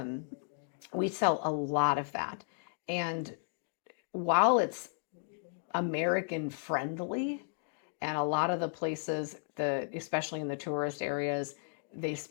we sell a lot of that. And while it's American friendly, and a lot of the places, especially in the tourist areas, they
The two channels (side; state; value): right; silent; digital silence